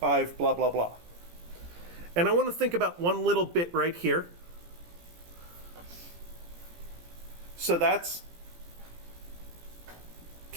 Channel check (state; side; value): late; left; 17 ms